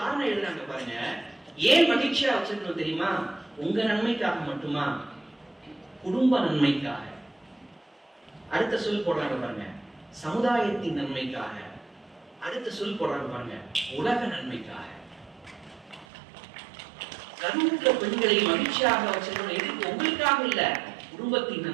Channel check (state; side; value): drops out; left; at 16.1 s